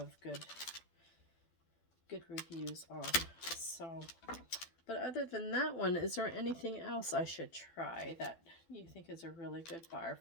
good reviews on. So, but other than that one, is there anything else I should try that you think is a really good bar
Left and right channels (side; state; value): right; late; 12 ms